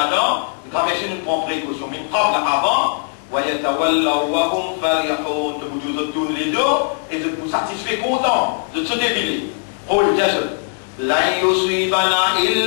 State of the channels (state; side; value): silent; right; digital silence